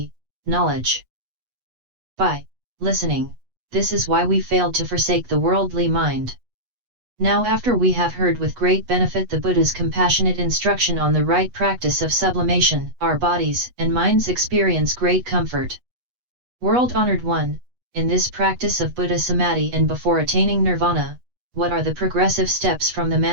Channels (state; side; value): late; left; 8.2 ms